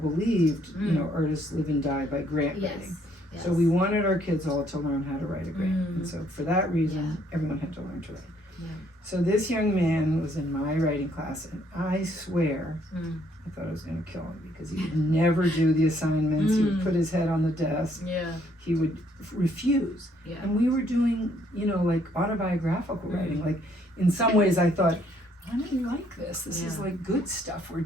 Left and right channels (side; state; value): both; normal; correlation 0.67